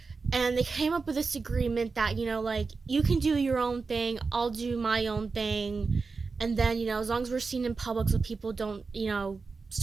And they came up with this agreement that, like, you can do your own thing, I'll do my own thing, and then, as long as we're seen in public so people don't,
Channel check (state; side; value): quieter; left; 4.4 dB